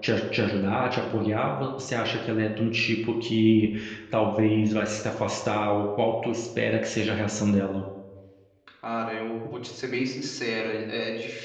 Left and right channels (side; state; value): both; identical; correlation 1.00